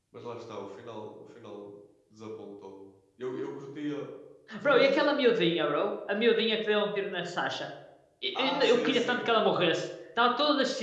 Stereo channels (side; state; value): both; identical; correlation 1.00